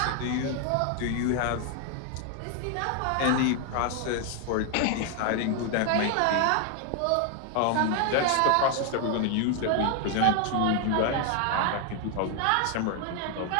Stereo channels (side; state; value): both; different; correlation 0.00